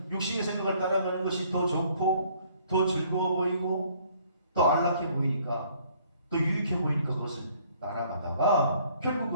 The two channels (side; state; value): both; inverted; correlation -0.61